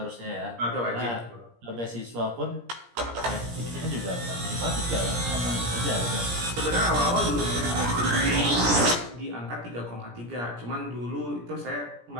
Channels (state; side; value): late; left; 17 ms